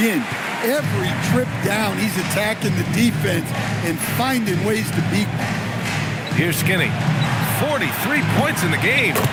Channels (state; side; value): identical; both; correlation 1.00